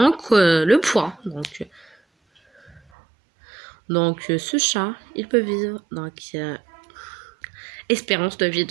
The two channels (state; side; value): drops out; left; at 2.8 s